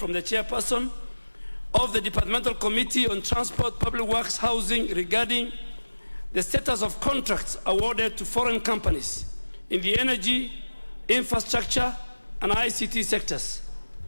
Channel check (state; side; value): inverted; both; correlation -1.00